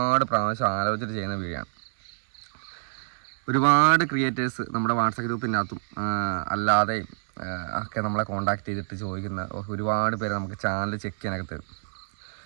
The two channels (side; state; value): left; silent; digital silence